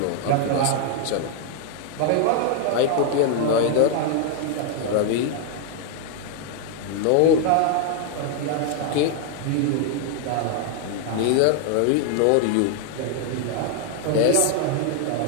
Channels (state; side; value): different; both; correlation 0.00